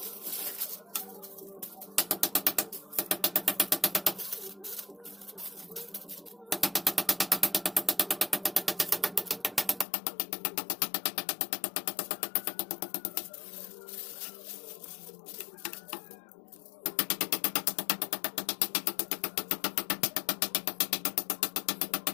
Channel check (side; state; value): right; drops out; at 9.9 s